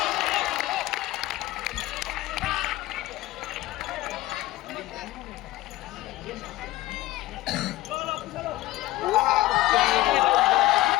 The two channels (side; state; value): right; quieter; 16.8 dB